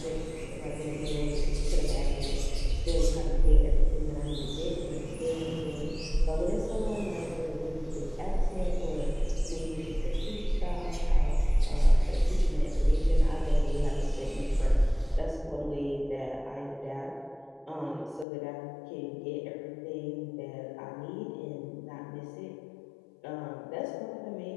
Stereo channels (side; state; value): right; drops out; at 18.2 s